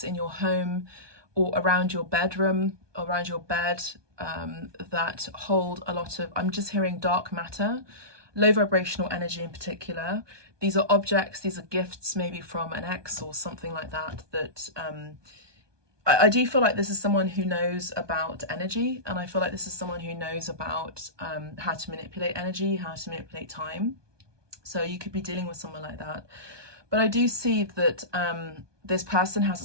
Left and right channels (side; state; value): left; late; 1.2 ms